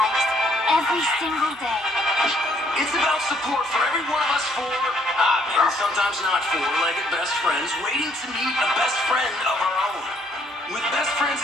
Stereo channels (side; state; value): both; normal; correlation 0.66